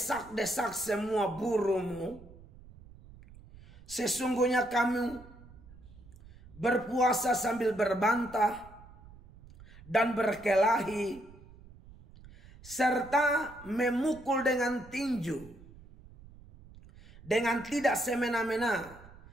semua burumu. Sesungguhnya kamu berpuasa sambil berbantah dan berkelahi, serta memukul dengan tinju, dengan tidak semena-mena.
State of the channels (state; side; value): noise; right; rumble, 21 dB below the sound